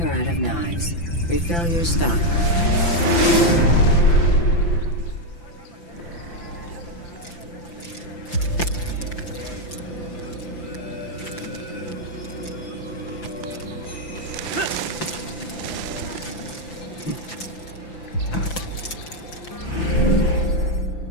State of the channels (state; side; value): late; right; 5.9 ms